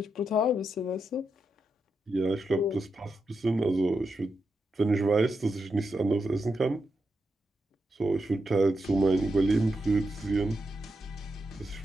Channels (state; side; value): normal; both; correlation 0.86